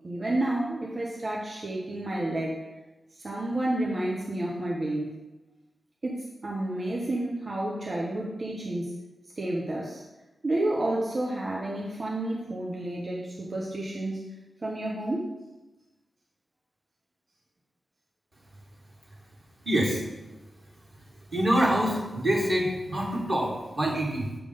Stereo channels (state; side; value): normal; both; correlation 0.91